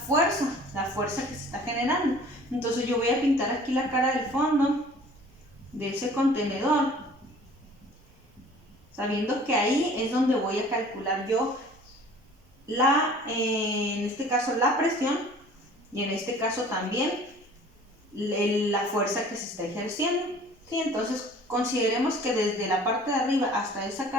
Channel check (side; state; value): both; normal; correlation 0.49